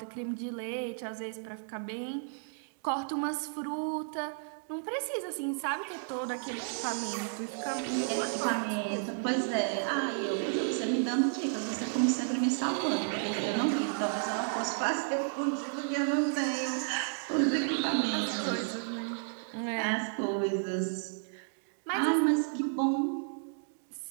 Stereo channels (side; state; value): left; silent; digital silence